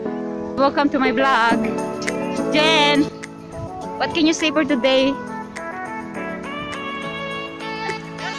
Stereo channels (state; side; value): identical; both; correlation 1.00